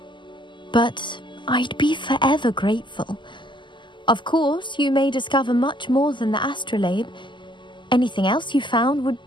But I'd be forever grateful. Of course, you may discover much more than the astrolabe. Anything else you found would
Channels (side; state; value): right; late; 0.23 ms